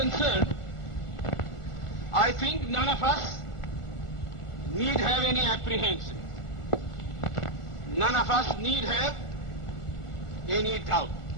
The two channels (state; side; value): late; right; 1.4 ms